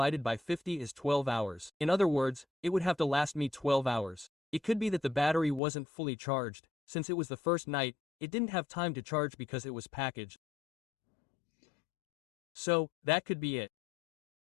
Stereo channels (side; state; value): right; drops out; at 5.6 s